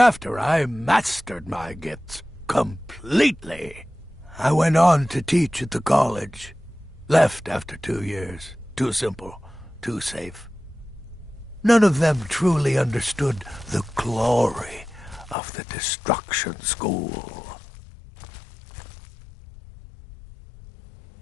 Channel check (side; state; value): right; drops out; at 15.4 s